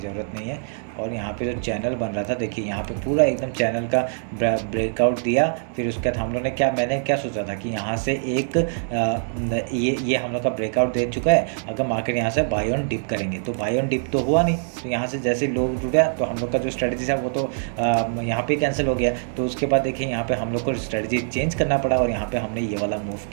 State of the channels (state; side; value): silent; left; digital silence